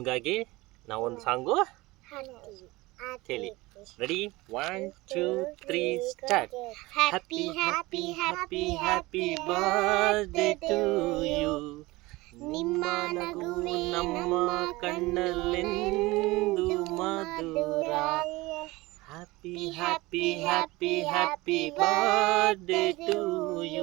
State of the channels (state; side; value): quieter; left; 21.1 dB